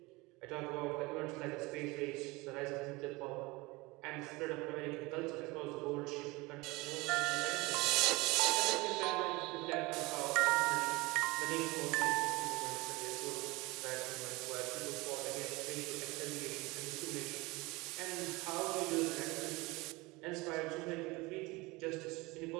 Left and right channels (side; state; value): left; quieter; 23.3 dB